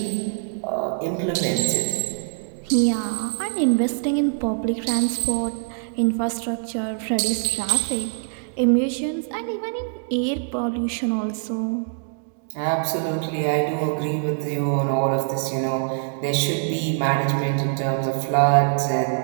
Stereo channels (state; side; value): silent; left; digital silence